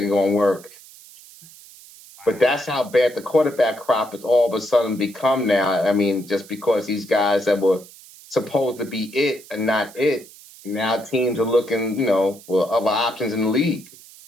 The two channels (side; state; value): right; noise; hiss, 21 dB below the sound